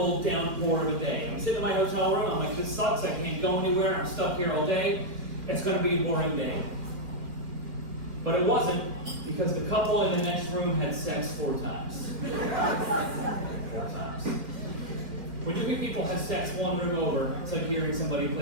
downpour of a day. I'm sitting in my hotel room, I'm like, this sucks, I can't go anywhere, I'm stuck here all day. It's going to be a boring day. But it wasn't, because the couple in the next room had sex 4 times. 4 times. When you think people have sex one room over, it's like hearing somebody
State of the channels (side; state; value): left; late; 2.1 ms